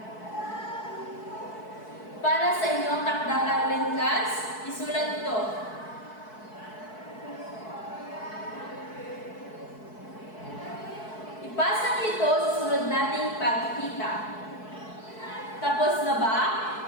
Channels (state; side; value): late; right; 4.6 ms